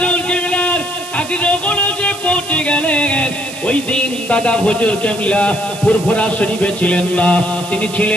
কেবলার কাছে যখন এসে পৌঁছে গেলেন, ওই দিন দাদা হুজুর কেবলা ফুরফুরা শরীফে ছিলেন না, তিনি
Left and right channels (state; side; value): noise; right; hiss, 13 dB below the sound